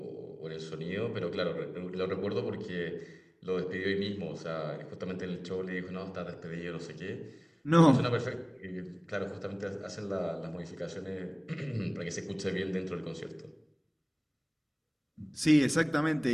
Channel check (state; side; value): identical; both; correlation 1.00